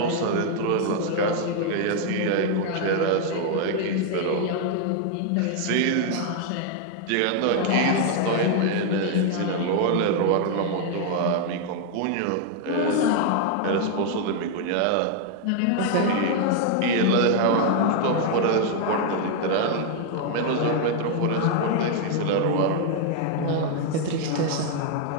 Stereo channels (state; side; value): different; both; correlation 0.00